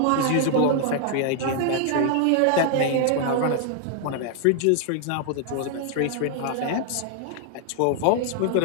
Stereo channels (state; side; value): different; both; correlation 0.00